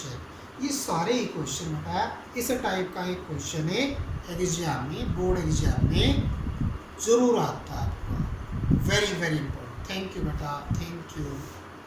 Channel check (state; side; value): identical; both; correlation 1.00